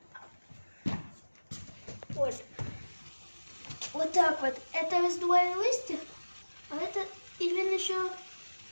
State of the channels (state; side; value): inverted; both; correlation -1.00